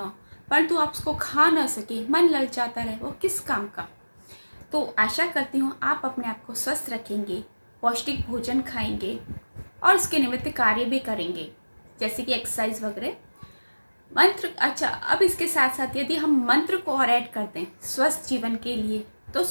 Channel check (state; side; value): inverted; both; correlation -1.00